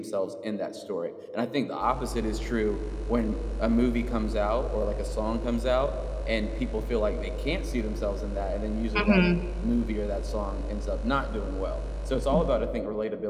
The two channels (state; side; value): identical; both; correlation 1.00